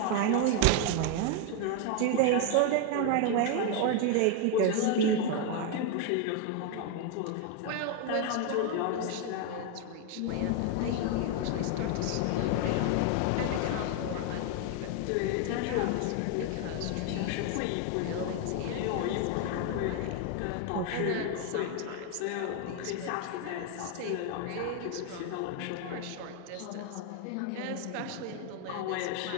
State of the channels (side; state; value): both; different; correlation 0.01